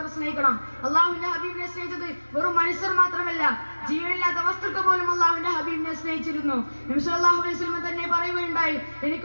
സ്നേഹിക്കണം. അള്ളാഹുവിന്റെ ഹബീബിനെ സ്നേഹിച്ചത് വെറും മനുഷ്യർ മാത്രമല്ല, ജീവനില്ലാത്ത വസ്തുക്കൾ പോലും അള്ളാഹുവിന്റെ ഹബീബിനെ സ്നേഹിച്ചിരുന്നു. നബി സല്ലല്ലാഹു അലൈഹി വസല്ലം തന്നെ പറയുകയുണ്ടായി,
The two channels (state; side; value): inverted; both; correlation -1.00